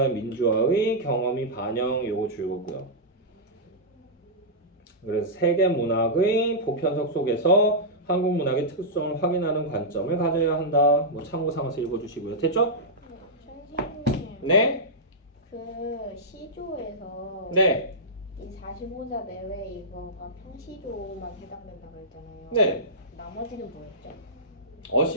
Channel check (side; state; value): both; normal; correlation -0.12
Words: 민주화의 경험이 반영, 요거 줄거고요. 그래서 세계 문학의 보편성 속에서 한국 문학의 특성을 확인하는 관점을 가져야 한다. 뭐 참고 삼아서 읽어주시고요. 됐죠? 선생님, 네? 그 시조에서 네. 이 45자 내외 이거가 평시조만 해당된다고 했잖아요. 네. 나머지는 뭐였죠?